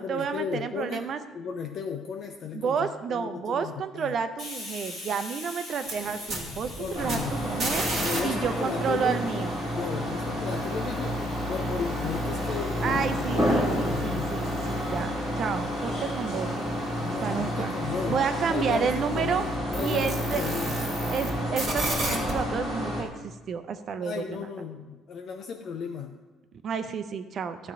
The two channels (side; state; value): both; normal; correlation 0.68